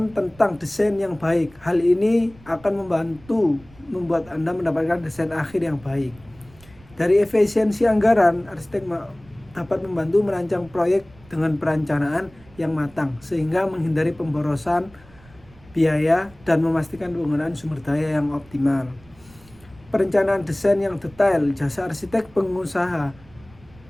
tentang desain yang baik. Hal ini akan membantu membuat Anda mendapatkan desain akhir yang baik. Dari efisiensi anggaran, arsitek dapat membantu merancang proyek dengan perencanaan yang matang sehingga menghindari pemborosan biaya dan memastikan penggunaan sumber daya yang optimal. Perencanaan desain yang detail, jasa arsitek pengusaha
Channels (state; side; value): noise; right; rumble, 25 dB below the sound